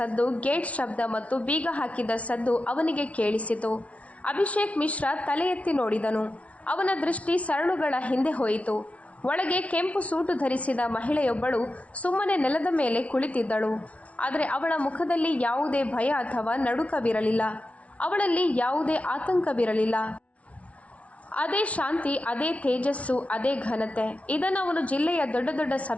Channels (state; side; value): late; right; 0.064 ms